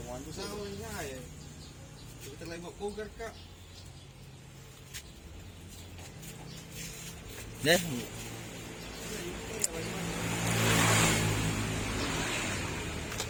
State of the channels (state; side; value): identical; both; correlation 1.00